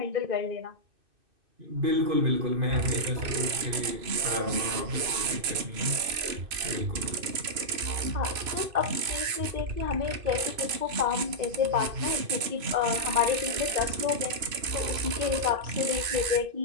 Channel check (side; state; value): left; late; 2.6 ms